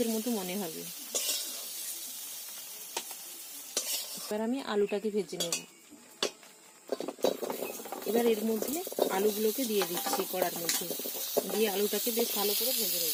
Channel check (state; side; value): identical; both; correlation 1.00